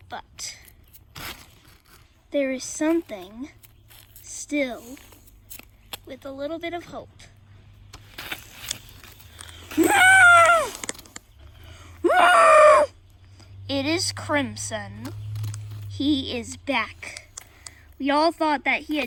But there is something still with a little bit of hope. It is Crimson. He is back. We all thought that he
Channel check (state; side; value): identical; both; correlation 1.00